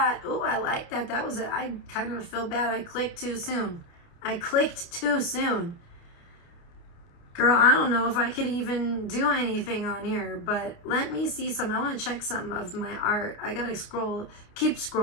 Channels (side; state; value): right; late; 29 ms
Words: Oh, I like that. I kind of feel bad. I clicked too soon. Girl, I don't know if I could even do anything on here, but let me see some. I want to check some of my art. I gotta keep